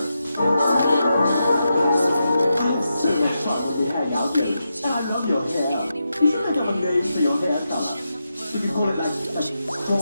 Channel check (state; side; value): inverted; both; correlation -0.87